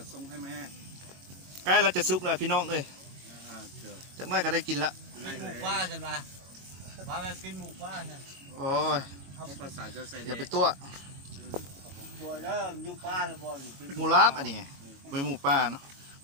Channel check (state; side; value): late; left; 21 ms